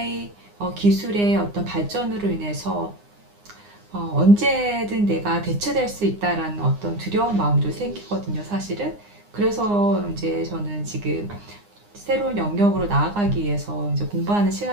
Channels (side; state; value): left; late; 9.8 ms